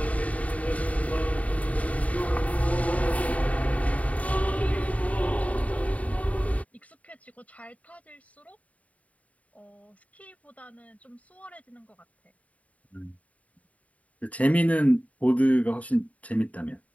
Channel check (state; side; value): late; right; 0.068 ms